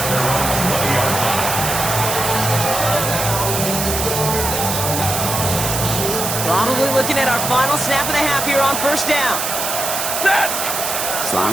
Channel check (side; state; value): right; noise; hiss, 2 dB below the sound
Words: Probably looking at our final snap of the half here on 1st down.